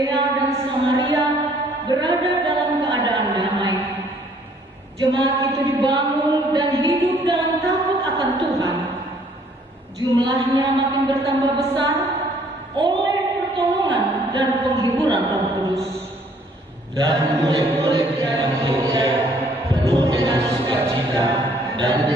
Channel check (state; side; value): normal; both; correlation 0.61